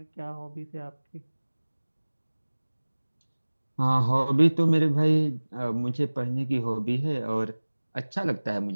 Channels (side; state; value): both; inverted; correlation -1.00